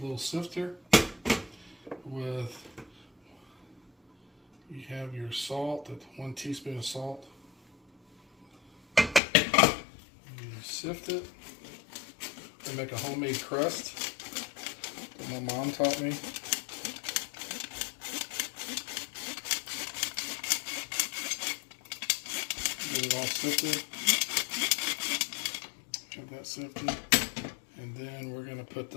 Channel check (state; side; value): drops out; right; at 9.2 s